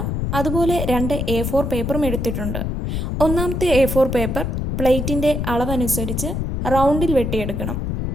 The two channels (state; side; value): noise; left; rumble, 2 dB below the sound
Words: അതുപോലെ 2 A4 പേപ്പറും എടുത്തിട്ടുണ്ട്. ഒന്നാമത്തെ A4 പേപ്പർ പ്ലേറ്റിൻ്റെ അളവനുസരിച്ച് റൗണ്ടിൽ വെട്ടിയെടുക്കണം.